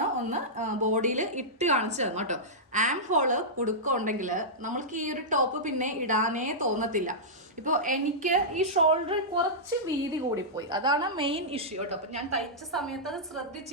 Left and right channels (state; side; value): normal; both; correlation -0.12